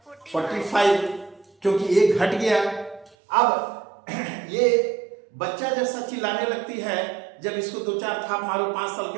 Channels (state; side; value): drops out; left; at 3.2 s